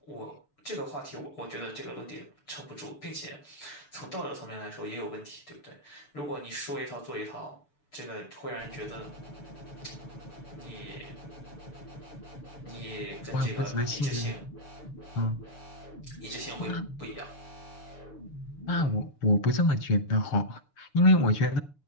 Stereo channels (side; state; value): right; late; 6.9 ms